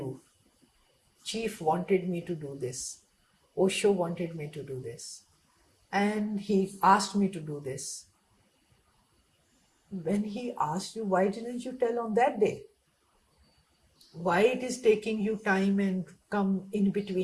Chief wanted me to do this. Osho wanted me to do this. And he asked me to do this. When he asked you, why didn't you tell on that day? Why it is taking you time and come in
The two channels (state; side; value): identical; both; correlation 1.00